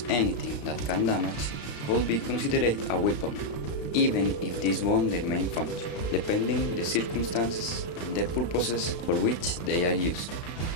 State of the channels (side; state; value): right; late; 35 ms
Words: anything that can damage could be considered a weapon, even if this won't their main function, depending the circumstances and the purposes for which they are used.